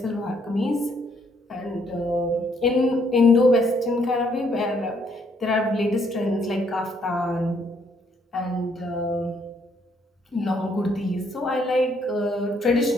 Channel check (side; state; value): both; normal; correlation 0.69